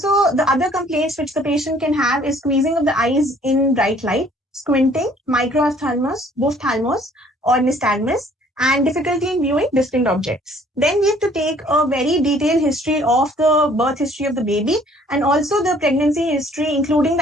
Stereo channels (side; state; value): both; normal; correlation 0.58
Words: the other complaints which the patient can have is squeezing of the eyes in bright light, squinting, microphthalmos, ophthalmos, or nystagmus, and difficulty in viewing distinct objects. Then we have to take a very detailed history of the birth history of the baby and also the pregnancy history, including